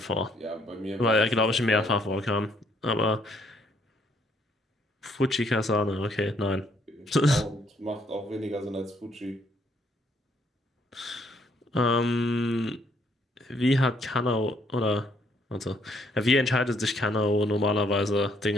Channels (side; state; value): both; normal; correlation 0.69